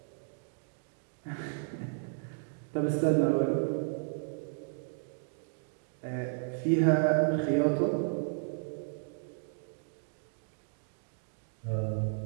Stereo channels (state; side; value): silent; left; digital silence